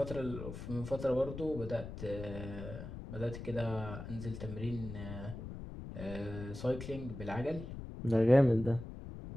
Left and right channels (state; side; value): noise; left; rumble, 9 dB below the sound